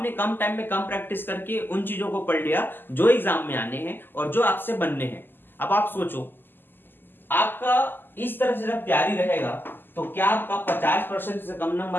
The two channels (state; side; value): late; right; 0.094 ms